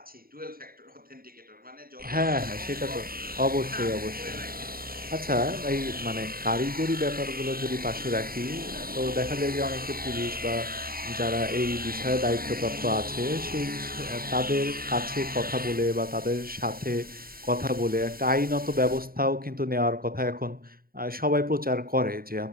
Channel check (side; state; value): left; late; 0.43 ms